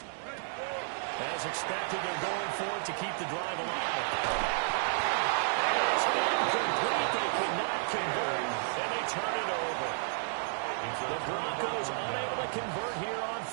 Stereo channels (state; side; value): silent; left; digital silence